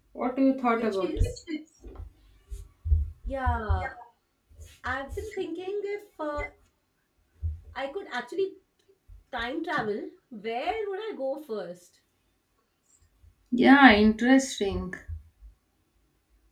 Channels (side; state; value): both; identical; correlation 1.00